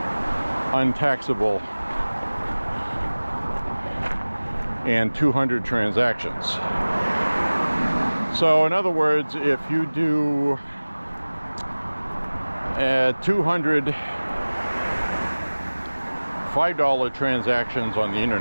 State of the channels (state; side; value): inverted; both; correlation -1.00